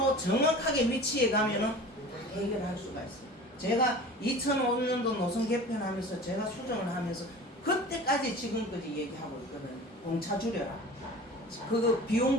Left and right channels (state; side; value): normal; both; correlation 0.39